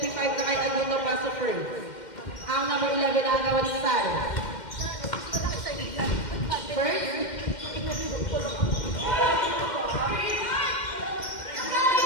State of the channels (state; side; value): late; right; 2.1 ms